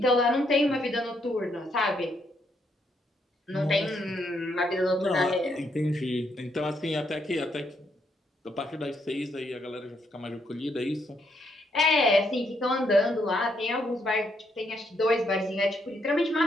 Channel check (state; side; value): normal; both; correlation 0.75